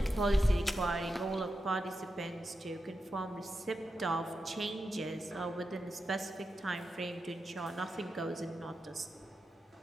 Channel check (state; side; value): normal; both; correlation 0.89